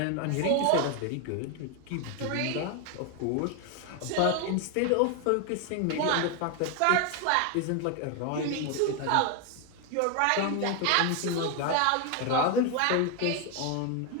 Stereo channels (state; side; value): different; both; correlation 0.01